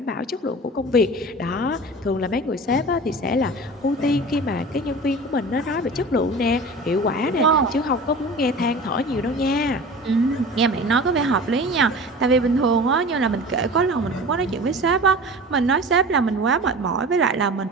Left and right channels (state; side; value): normal; both; correlation 0.37